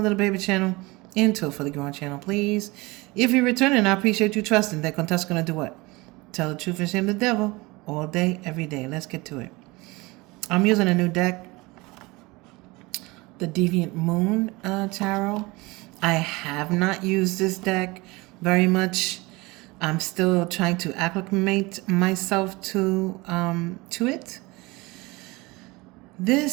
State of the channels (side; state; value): left; quieter; 23.3 dB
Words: little baby channel into a fully grown channel, please. If you're returning, I appreciate you trusting that Contessa's going to do what? Tell the truth and shame the devil all day, every day. Let's get to it. I'm using a new deck, the Deviant Moon Tarot. I have not used this deck very much. I'm still trying to acclimate myself to it.